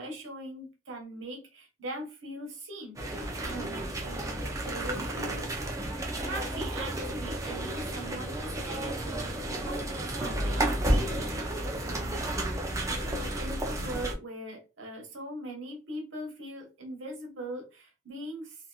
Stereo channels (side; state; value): both; normal; correlation 0.57